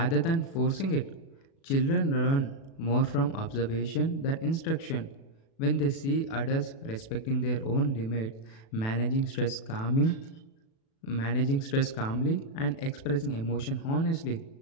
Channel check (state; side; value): late; right; 36 ms